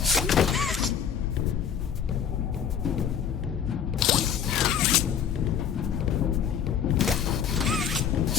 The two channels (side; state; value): right; quieter; 8.0 dB